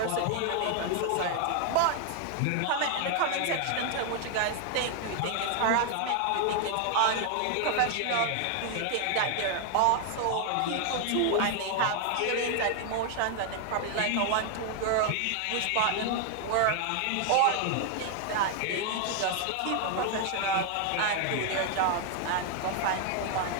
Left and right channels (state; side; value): different; both; correlation 0.00